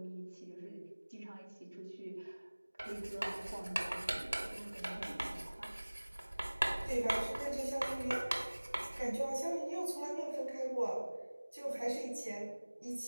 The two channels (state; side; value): inverted; both; correlation -1.00